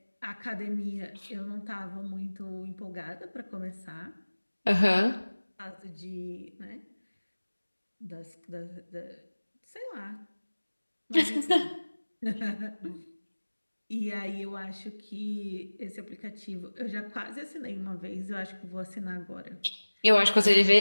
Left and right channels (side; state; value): both; inverted; correlation -1.00